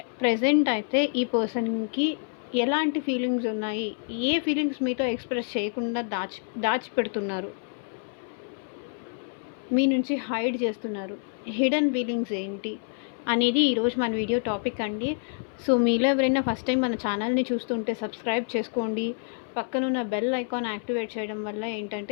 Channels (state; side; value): silent; right; 60 dB below the other